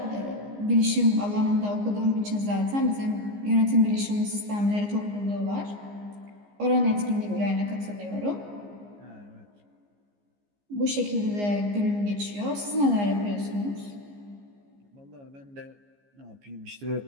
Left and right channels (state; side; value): late; left; 15 ms